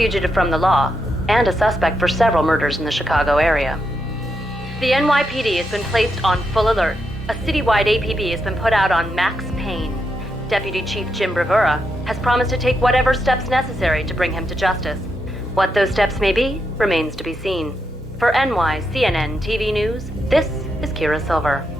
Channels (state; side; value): normal; both; correlation 0.83